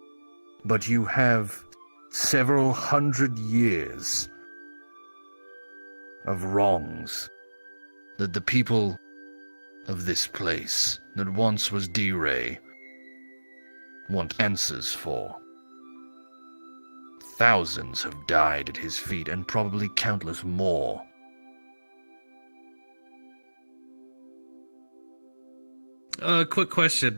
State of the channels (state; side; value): inverted; both; correlation -1.00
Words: But you have several hundred years of wrongs that the people of this place, that once was D-Ray, want answers for. Thousands have died at his feet, and probably countless more. Quick question.